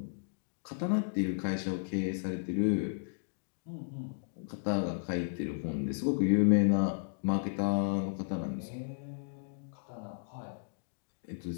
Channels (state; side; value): silent; right; digital silence